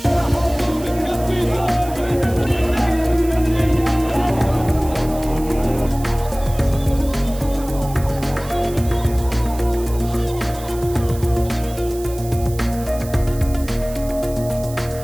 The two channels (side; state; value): right; noise; hiss, 17 dB below the sound